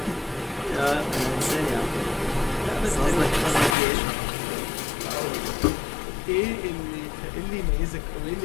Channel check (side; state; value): right; drops out; at 3.8 s